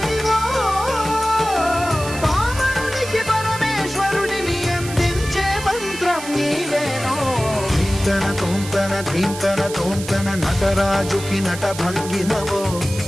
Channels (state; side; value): noise; right; hiss, 11 dB below the sound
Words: పామరునికి పరమేశ్వరుడిని అందించే మంత్రం నీవేనో. ధీంతన తోంతన ధీంతన తోంతన నటరాజుకి నట భంగిమవో,